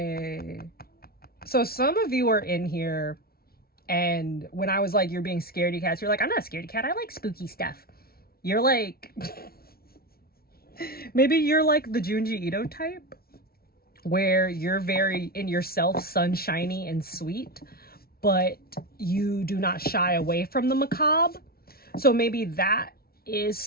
So some of you are in here, and when I was like, you're being scaredy cats, you're like, I'm not a scaredy cat, I like spooky stuff. You're like, maybe you're like the Junji Ito type, where you're very in yourself, sunshiny and sweet, but you do not shy away from the macabre. So maybe that is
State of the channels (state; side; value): late; right; 0.44 ms